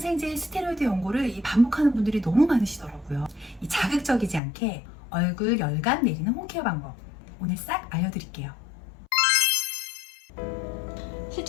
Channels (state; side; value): drops out; right; at 4.4 s